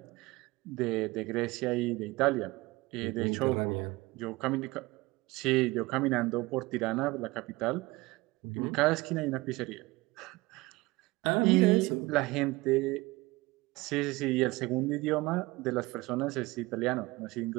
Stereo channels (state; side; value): quieter; left; 21.7 dB